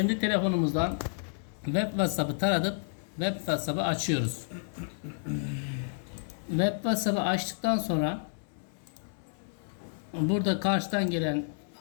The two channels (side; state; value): right; silent; 57 dB below the other